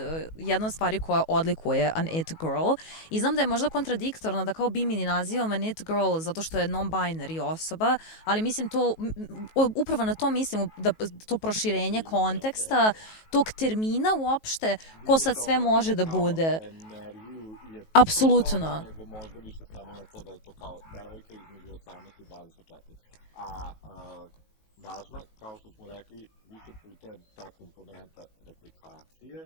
jedna od stvari koja odlikuje an it girl. I znam da je možda kontradiktorno da kao Bimini nazivam an it girl zato što je non-binary osoba, ali mislim to, upravo na to mislim, da to proširenje konteksta, tog termina uopšte, ko sad sve može da bude. Apsolutno. Nego možda više samo na to da je to kao devojka između 18 i 24. A važna, kao što smo rekli, više puta je ta komponenta replikacije.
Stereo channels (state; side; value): late; right; 19 ms